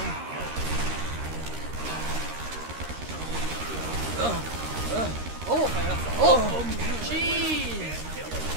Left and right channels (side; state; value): left; late; 13 ms